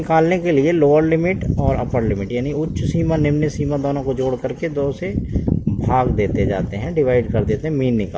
के लिए लोअर लिमिट और अपर लिमिट, यानी उच्च सीमा निम्न सीमा दोनों को जोड़ करके 2 से भाग देते जाते हैं, डिवाइड कर देते हैं, मीन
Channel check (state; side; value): identical; both; correlation 1.00